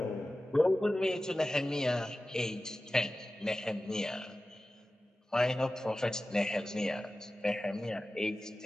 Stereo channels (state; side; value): normal; both; correlation 0.95